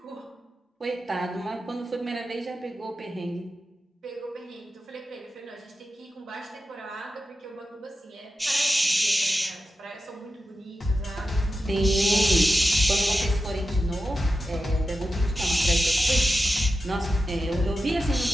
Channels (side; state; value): both; normal; correlation 0.91